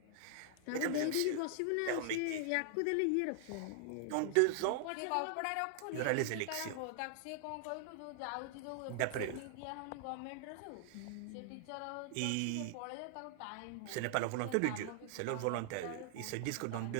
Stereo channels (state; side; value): different; both; correlation -0.01